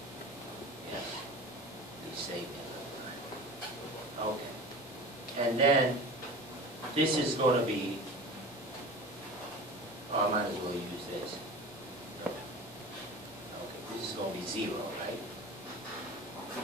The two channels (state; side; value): normal; both; correlation 0.35